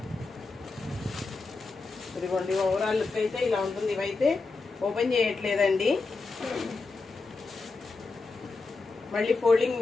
ఇదిగోండి ఓవరాల్ లుక్ అయితే ఇలా ఉంటుంది. ఇవైతే ఓపెన్ చేయట్లేదండి, మళ్ళీ ఫోల్డింగ్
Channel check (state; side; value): quieter; right; 3.9 dB